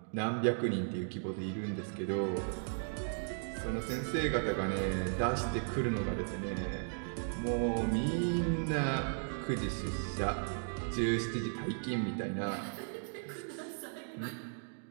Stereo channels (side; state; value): left; silent; digital silence